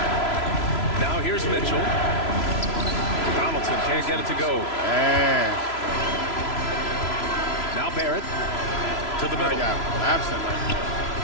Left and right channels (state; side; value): late; right; 3.0 ms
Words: Now here's Mitchell. Donaldson can't get it to go. Now Barrett to the middle. Absent right there.